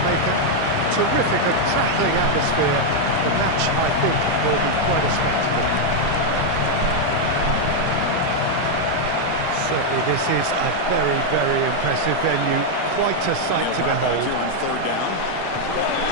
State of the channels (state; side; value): different; both; correlation 0.00